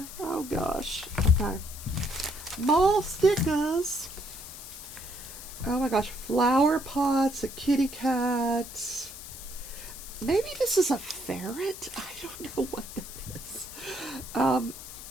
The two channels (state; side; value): noise; left; hiss, 13 dB below the sound